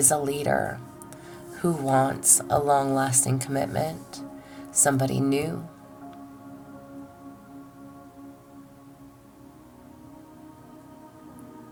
a leader, who wants a long-lasting commitment, somebody new.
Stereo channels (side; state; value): both; identical; correlation 1.00